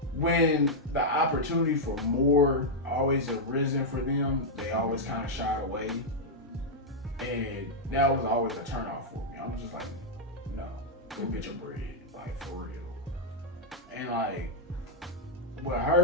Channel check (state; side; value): normal; both; correlation -0.04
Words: when the opportunity for more always arisen for them, they always kind of shied away. And that was always a turnoff for me. I'm just like, no, go get your bread, like for real. And like with